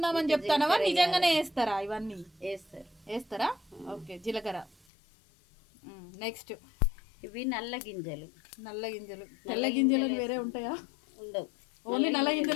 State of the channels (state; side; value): drops out; right; at 4.8 s